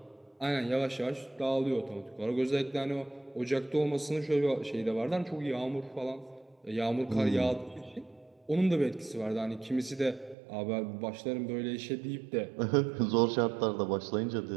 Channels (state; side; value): drops out; left; at 10.4 s